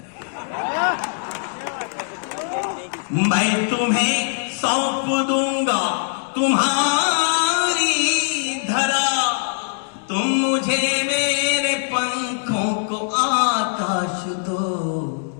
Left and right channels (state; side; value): silent; right; digital silence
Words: मैं तुम्हें सौंप दूंगा तुम्हारी धरा, तुम मुझे मेरे पंखों को आकाश दो।